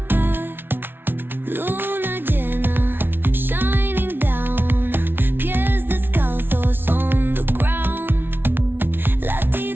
Luna llena, shining down. Pies descalzos on the ground.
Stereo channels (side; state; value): left; late; 0.10 ms